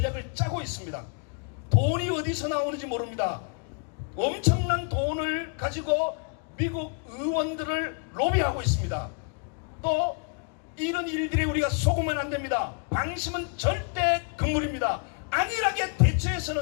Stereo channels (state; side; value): quieter; right; 38.7 dB